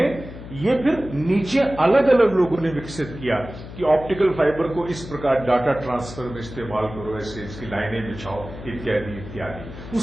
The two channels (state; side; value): noise; left; hum, 13 dB below the sound